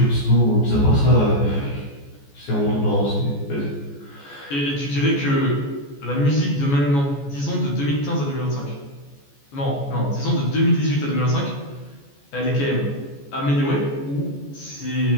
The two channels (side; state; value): right; late; 14 ms